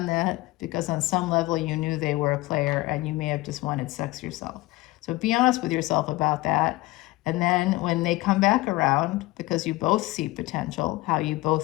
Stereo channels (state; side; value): quieter; right; 19.9 dB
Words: that because on some level you knew they were a player and you may have just wanted sex yourself. So be honest with yourself about that. And then when they come back around, because you both see potential, how you